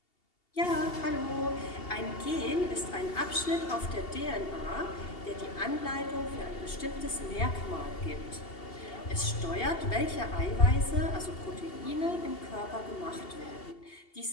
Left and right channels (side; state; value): right; late; 2.7 ms